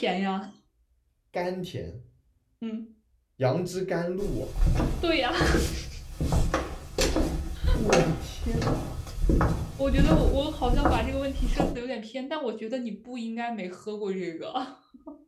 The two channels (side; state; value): both; identical; correlation 1.00